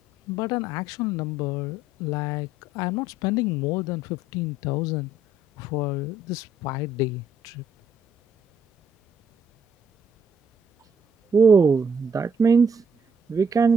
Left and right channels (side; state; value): both; normal; correlation 0.66